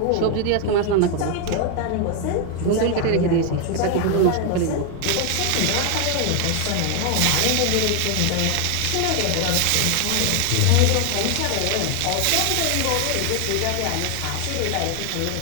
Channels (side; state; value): both; different; correlation 0.01